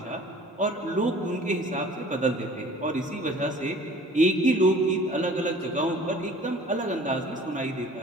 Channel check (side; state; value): both; normal; correlation 0.49